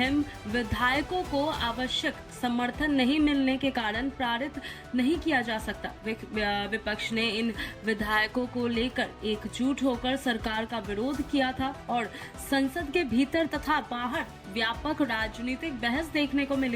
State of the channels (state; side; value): identical; both; correlation 1.00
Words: विधेयकों को आवश्यक समर्थन नहीं मिलने के कारण पारित नहीं किया जा सकता। विपक्ष ने इन विधेयकों को लेकर एकजुट होकर सरकार का विरोध किया था और संसद के भीतर तथा बाहर व्यापक राजनीतिक बहस देखने को